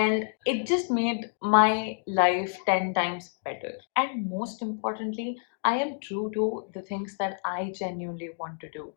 it just made my life 10 times better. And most importantly, I am true to the things that I genuinely want to do,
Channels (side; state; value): right; silent; digital silence